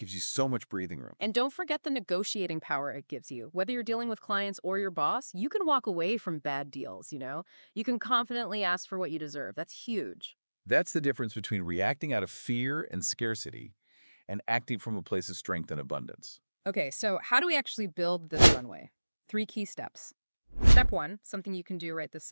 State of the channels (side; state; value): both; inverted; correlation -1.00